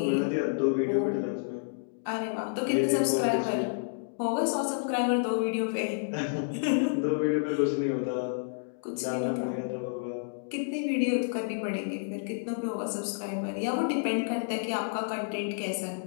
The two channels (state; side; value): silent; right; digital silence